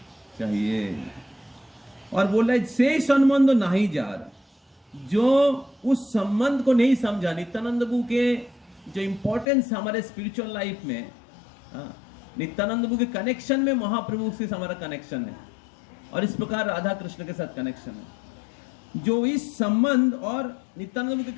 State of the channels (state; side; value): drops out; right; at 9.5 s